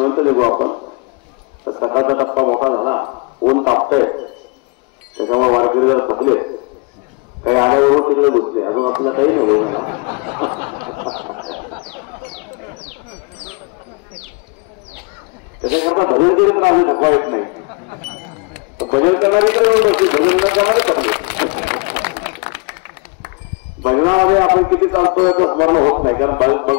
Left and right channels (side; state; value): right; quieter; 30.7 dB